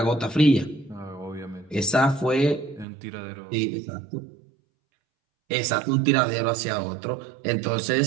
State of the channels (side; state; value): left; drops out; at 2.9 s